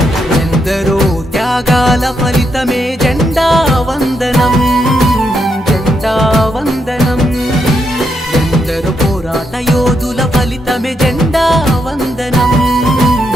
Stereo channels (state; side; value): normal; both; correlation 0.80